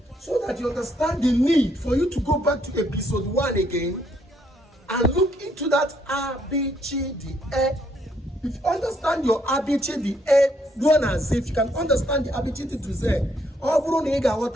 so that you understand the need for you to go back to episode 1 again and look into that ABCDE. If you understand your ABCDE, ruo na Z. If you can understand the ABCD to Z, ọ bụrụ na ị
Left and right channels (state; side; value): normal; both; correlation 0.71